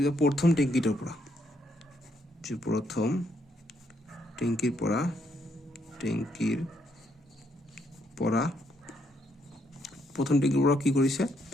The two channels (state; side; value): normal; both; correlation 0.74